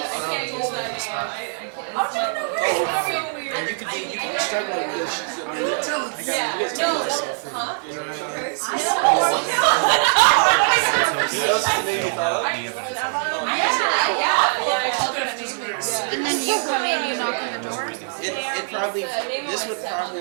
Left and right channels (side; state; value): left; silent; digital silence